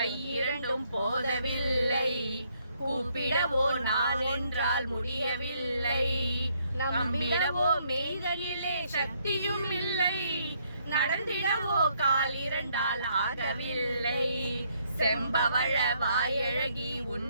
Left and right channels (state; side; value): inverted; both; correlation -0.71